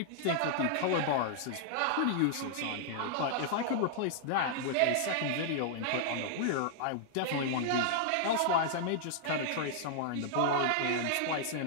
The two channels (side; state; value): both; different; correlation -0.01